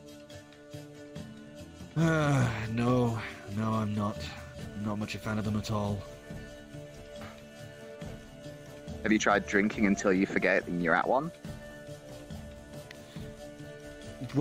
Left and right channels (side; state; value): both; identical; correlation 1.00